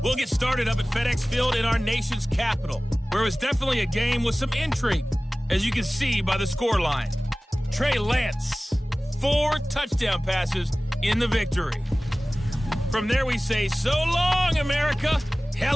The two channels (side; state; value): both; normal; correlation 0.98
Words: We'll get started up at FedEx Field in our nation's capital, where it was definitely a game with some intrigue, as you can see by the scoreline. Trey Lance, 4 touchdown passes in the victory. From there we say, so long, America.